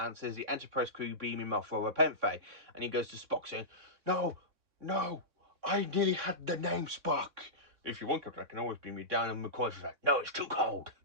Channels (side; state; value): left; late; 3.6 ms